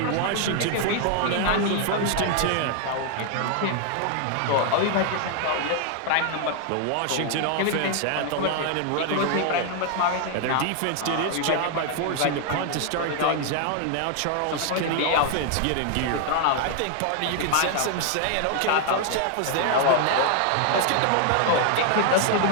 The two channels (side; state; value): both; different; correlation 0.00